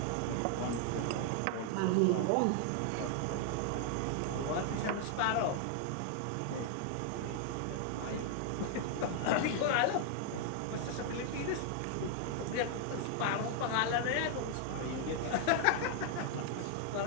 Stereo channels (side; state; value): both; different; correlation 0.00